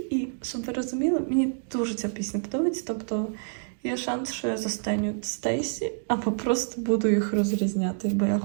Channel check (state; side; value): silent; left; digital silence